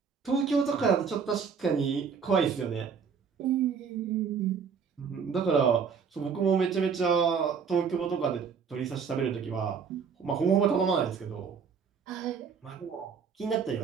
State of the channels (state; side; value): quieter; left; 6.3 dB